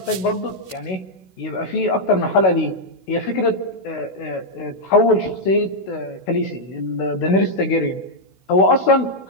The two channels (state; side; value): late; right; 16 ms